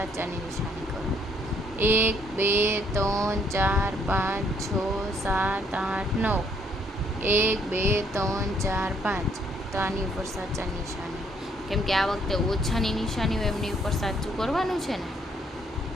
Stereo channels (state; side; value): normal; both; correlation 0.67